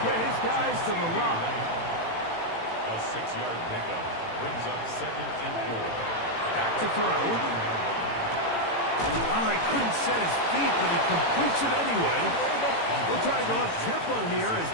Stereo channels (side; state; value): right; late; 18 ms